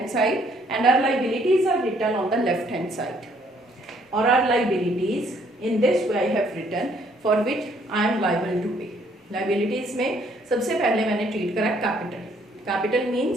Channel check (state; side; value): normal; both; correlation 0.65